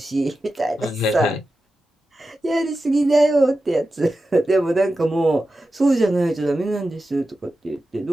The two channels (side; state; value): both; normal; correlation 0.92